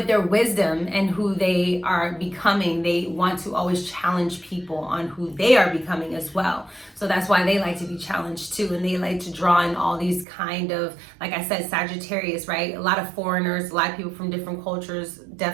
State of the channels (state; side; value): drops out; left; at 10.2 s